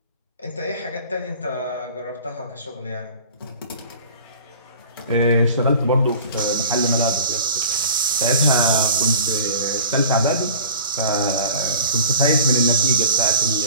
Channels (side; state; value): both; inverted; correlation -0.43